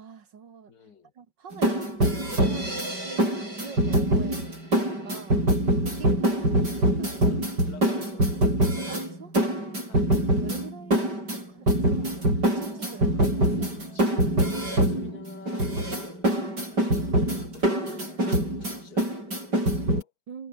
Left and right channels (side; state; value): left; late; 5.1 ms